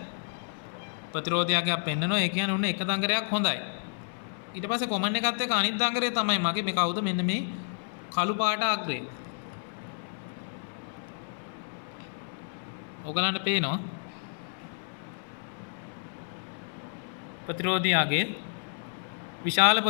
ප්‍රතිරෝධී අගයක් පෙන්නනවා. ඒ කියන්නේ උන්න එක දඟරයක් හොඳයි. ඊට පස්සේ කොමන් එකත් එක්ක අනිත් දඟරේ තමයි මගේ මේ කවුද මෙන්න මේ කළු පාට අග්‍රේ. ඔයගලන්ට පේනවා ප්‍රතිරෝධී අගයේ විශාල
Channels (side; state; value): right; silent; 58 dB below the other